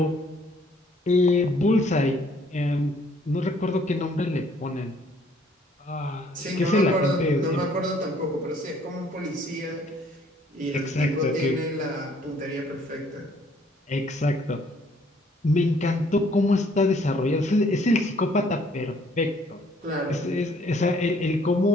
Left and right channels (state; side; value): normal; both; correlation 0.62